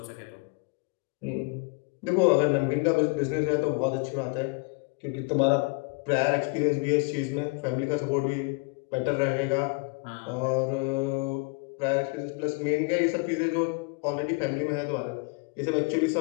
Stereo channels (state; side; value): quieter; right; 30.7 dB